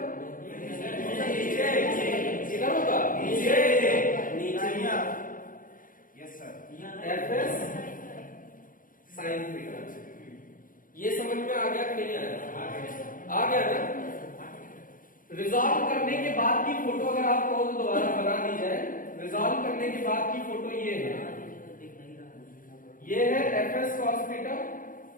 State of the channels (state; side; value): late; right; 0.40 ms